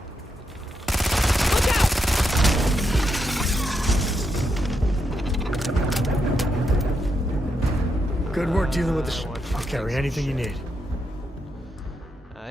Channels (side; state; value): both; normal; correlation 0.82